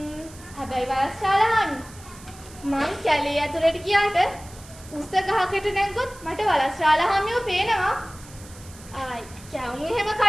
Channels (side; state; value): right; noise; hiss, 20 dB below the sound